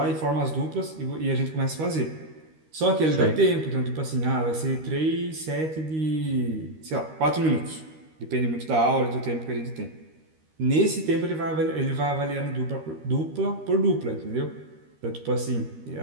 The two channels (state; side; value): late; left; 13 ms